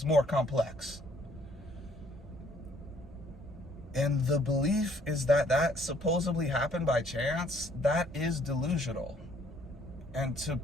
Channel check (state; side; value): normal; both; correlation 0.63